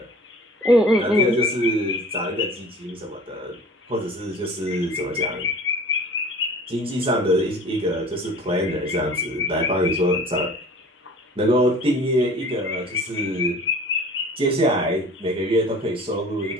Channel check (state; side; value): normal; both; correlation 0.44